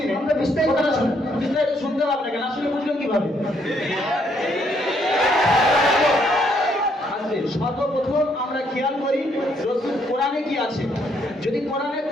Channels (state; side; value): normal; both; correlation 0.71